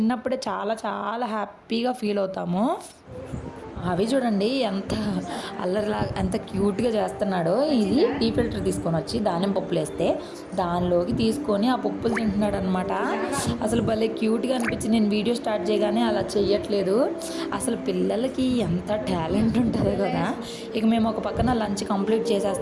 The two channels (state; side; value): identical; both; correlation 1.00